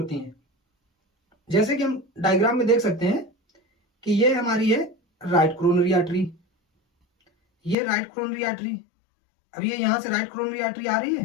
हैं। जैसे कि हम डायग्राम में देख सकते हैं कि ये हमारी है राइट कोरोनरी आर्टरी, ये राइट कोरोनरी आर्टरी। अब ये यहां से राइट कोरोनरी आर्टरी आ रही है,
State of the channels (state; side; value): drops out; right; at 7.8 s